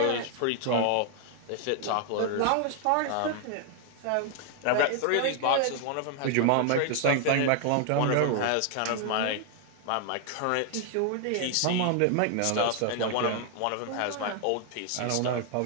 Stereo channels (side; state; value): both; different; correlation 0.00